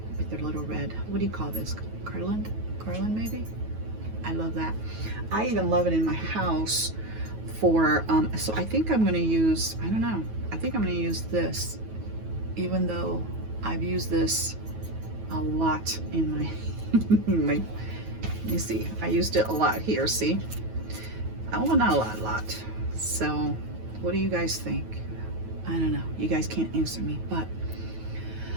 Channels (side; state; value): left; late; 9.3 ms